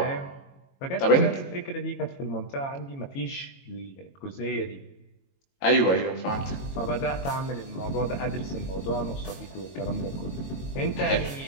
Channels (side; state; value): right; late; 22 ms